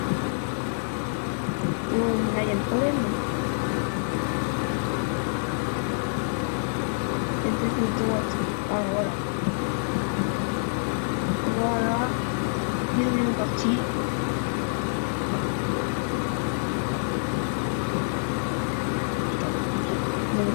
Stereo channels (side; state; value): right; silent; digital silence